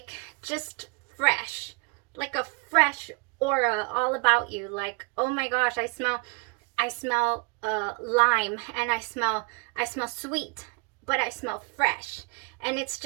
just fresh, like a fresh aura all about you. Like, oh my gosh, I smell lime, and I smell sweet, but I smell fresh. And it's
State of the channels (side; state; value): left; quieter; 31.5 dB